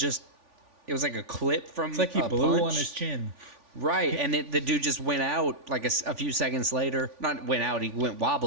like a clip from It's like he blew punch on his chin. Right, and the dude just went out like a few seconds later. Not went out, he went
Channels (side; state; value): left; late; 3.5 ms